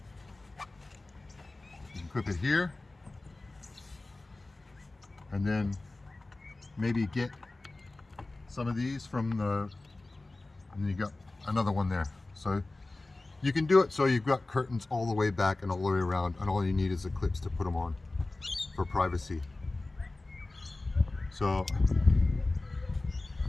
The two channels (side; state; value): right; quieter; 3.1 dB